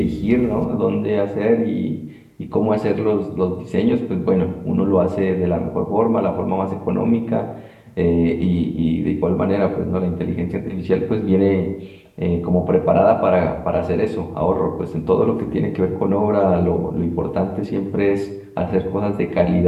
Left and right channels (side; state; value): both; identical; correlation 1.00